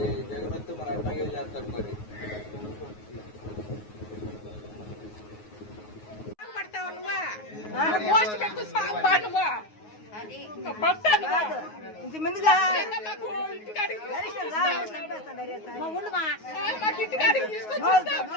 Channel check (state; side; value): late; right; 9.4 ms